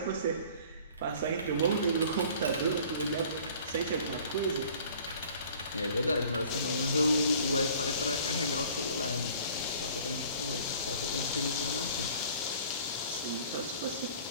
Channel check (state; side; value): inverted; both; correlation -0.50